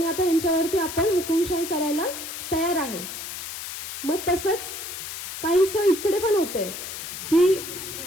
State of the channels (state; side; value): noise; left; hiss, 8 dB below the sound